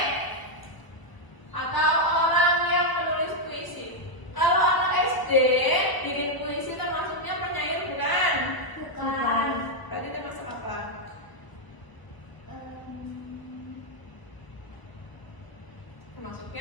atau orang yang menulis puisi. Kalau anak SD bikin puisi termasuknya penyair bukan? Bukan. Berarti termasuk apa?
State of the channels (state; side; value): late; right; 1.0 ms